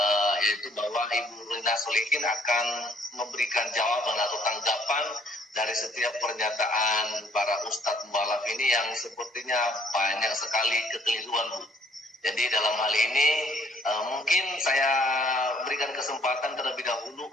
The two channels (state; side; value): normal; both; correlation 0.62